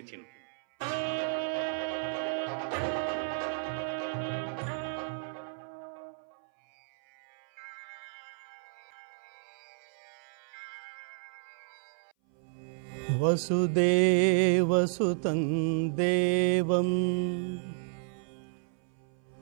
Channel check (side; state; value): left; silent; 56 dB below the other